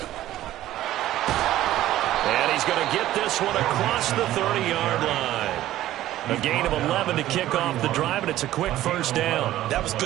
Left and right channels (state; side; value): quieter; left; 14.1 dB